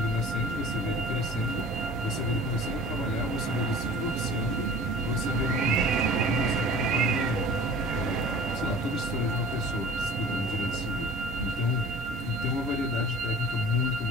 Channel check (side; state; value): both; normal; correlation 0.44